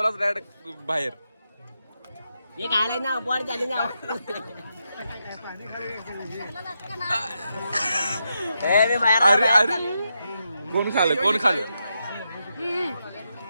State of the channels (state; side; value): inverted; both; correlation -0.84